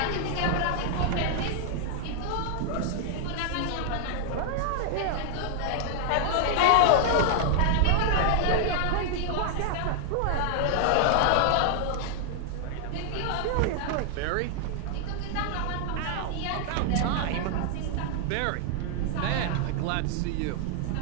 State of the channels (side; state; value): both; different; correlation 0.00